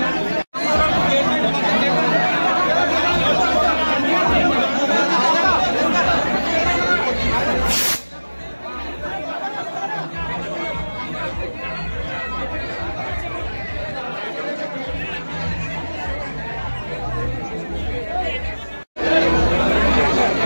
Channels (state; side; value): inverted; both; correlation -1.00